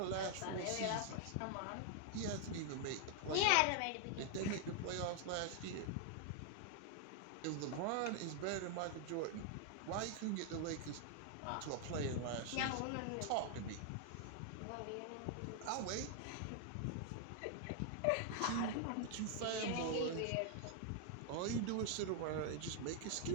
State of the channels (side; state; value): both; different; correlation 0.00